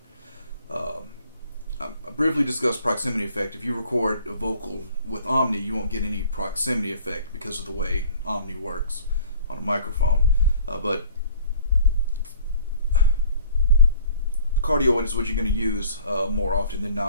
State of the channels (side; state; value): both; inverted; correlation -0.52